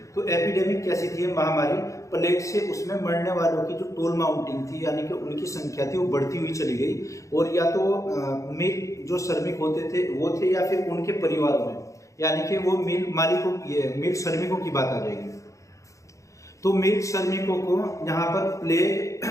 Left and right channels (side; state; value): right; late; 0.15 ms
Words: तो एपिडेमिक कैसी थी महामारी? प्लेग से उसमें मरने वालों की जो टोल माउंटिंग थी, यानी कि उनकी संख्या थी, वो बढ़ती हुई चली गई। और या तो मिल जो श्रमिक होते थे वो थे, या फिर उनके परिवारों में, यानी कि वो मिल मालिकों, ये मिल श्रमिकों की बात आ जाएगी। तो मिल श्रमिकों को यहाँ पर प्लेग,